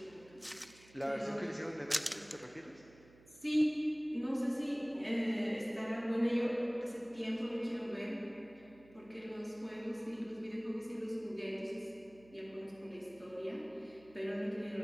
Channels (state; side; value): noise; right; hum, 24 dB below the sound